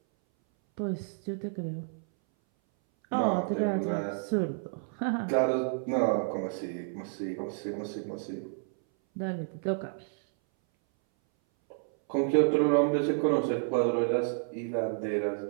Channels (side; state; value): left; silent; 58 dB below the other